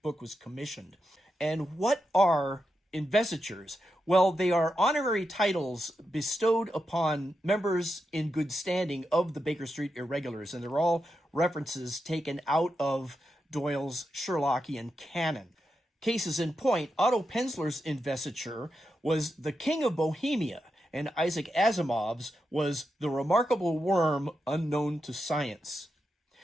book was commissioned. And what are investitures? Well, they are honorary titles bestowed upon members in good standing of the Baker Street Irregulars, and they're all references taken out of Doyle's Sherlockian canon. Cases in point, Otto Penzler's investiture was The King of Bohemia, and Isaac Asimov's was The Remarkable Worm Unknown to Science.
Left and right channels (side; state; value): both; normal; correlation 0.87